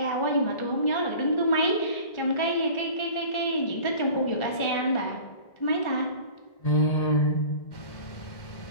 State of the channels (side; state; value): right; late; 1.4 ms